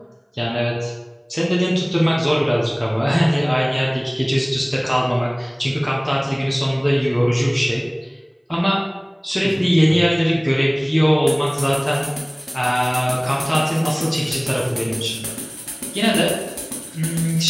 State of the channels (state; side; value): identical; both; correlation 1.00